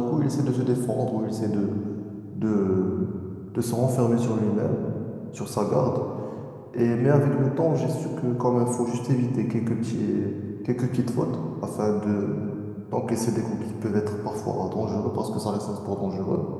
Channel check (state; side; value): identical; both; correlation 1.00